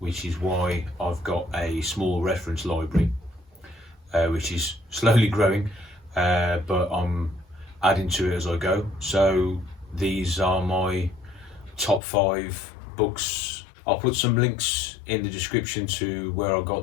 is why I've got a small reference library, which is slowly growing, but I'm adding to it as I go. So these are my top 5 books. I'll put some links in the description to where I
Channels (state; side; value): drops out; right; at 12.0 s